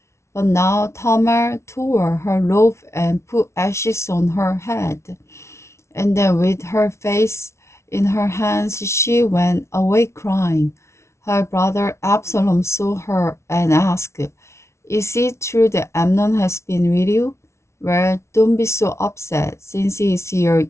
But now Tamar tore her robe and put ashes on her head. And then with her face in her hands, she went away crying. Her brother Absalom saw her and asked, "Is it true that Amnon has been with you?" "Well, don't be so upset, since he is your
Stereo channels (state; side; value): late; right; 0.13 ms